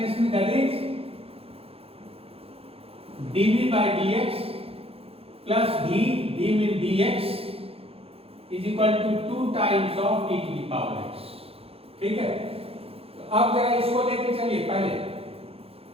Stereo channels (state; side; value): late; left; 0.28 ms